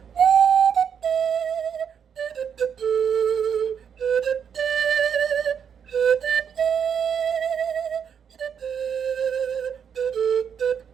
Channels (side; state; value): left; quieter; 7.6 dB